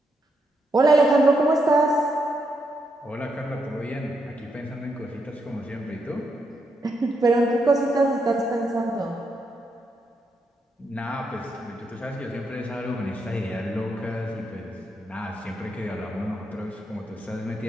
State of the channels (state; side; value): normal; both; correlation 0.80